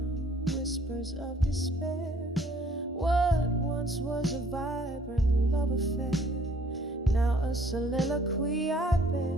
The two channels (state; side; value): normal; both; correlation 0.59